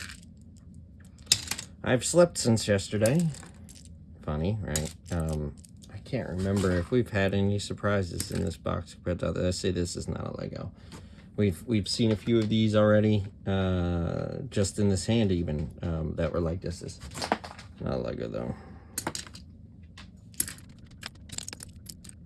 I've slept since yesterday. Funny, right? I can't remember if we've had any surprises in this box, but I say this is not a Lego. We've seen a few of these already, just in this hand even, that were like this. This is not a Lego though.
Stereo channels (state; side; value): identical; both; correlation 1.00